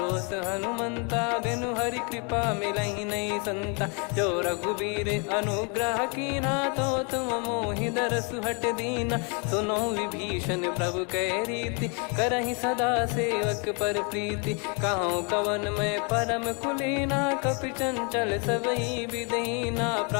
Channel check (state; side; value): quieter; right; 35.4 dB